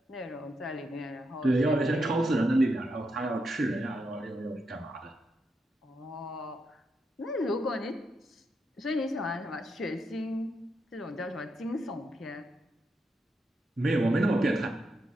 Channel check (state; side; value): normal; both; correlation 0.82